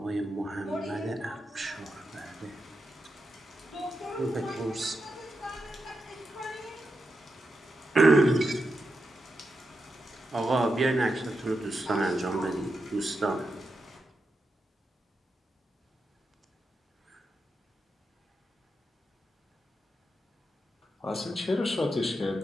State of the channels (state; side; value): normal; both; correlation 0.87